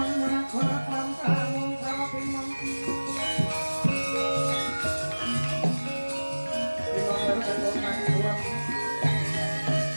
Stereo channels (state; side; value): inverted; both; correlation -1.00